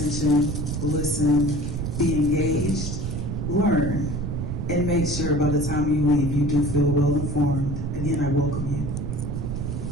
listen, be engaged, learn, and make sure by the time you leave you do feel well informed. Again, I welcome you.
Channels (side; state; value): right; noise; rumble, 3 dB below the sound